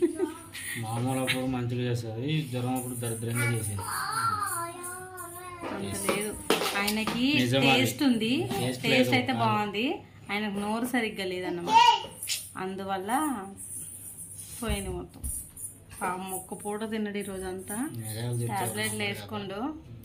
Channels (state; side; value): identical; both; correlation 1.00